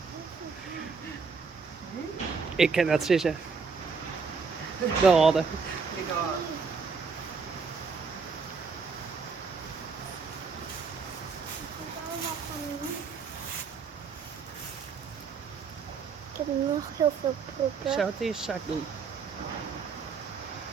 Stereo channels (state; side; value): quieter; left; 5.2 dB